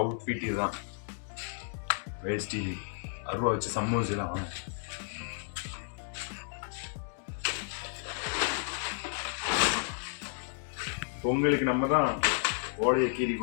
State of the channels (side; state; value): right; silent; digital silence